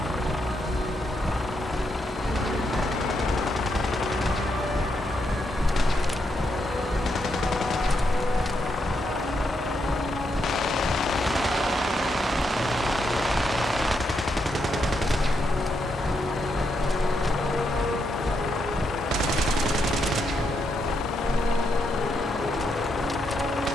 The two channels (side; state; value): both; normal; correlation 0.80